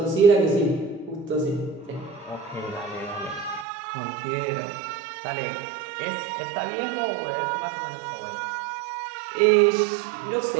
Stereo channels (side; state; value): left; drops out; at 3.7 s